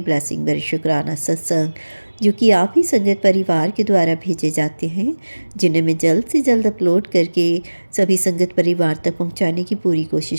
ब्लेसिंग भरे शुक्राना सत्संग, जो कि आप ही संगत परिवार के द्वारा भेजे जाते हैं, जिन्हें मैं जल्द से जल्द अपलोड करके सभी संगत परिवार तक पहुँचाने की पूरी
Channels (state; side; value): inverted; both; correlation -1.00